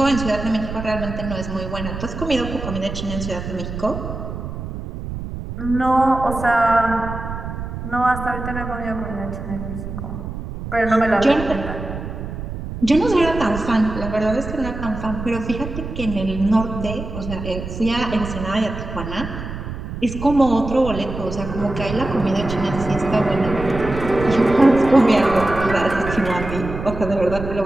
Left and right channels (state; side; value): noise; right; rumble, 8 dB below the sound